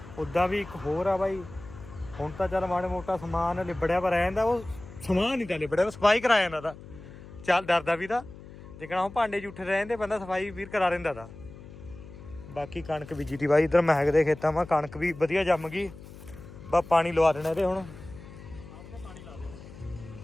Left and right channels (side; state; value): left; noise; hum, 17 dB below the sound